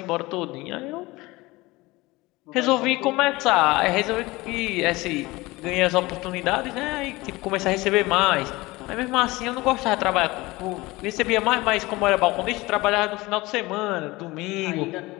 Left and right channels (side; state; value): right; quieter; 21.2 dB